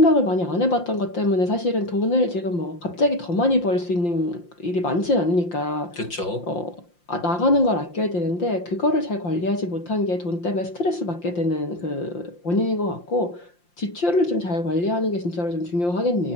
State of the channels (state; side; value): late; right; 5.7 ms